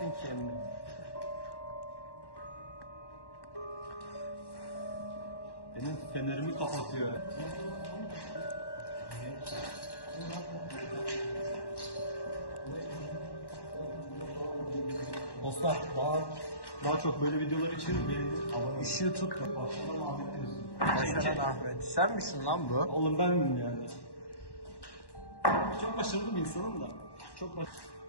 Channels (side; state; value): right; late; 1.1 ms